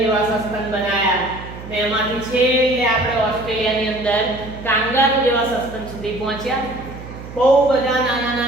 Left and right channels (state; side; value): noise; right; hum, 13 dB below the sound